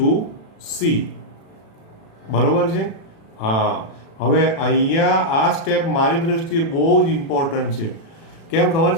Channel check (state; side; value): late; right; 36 ms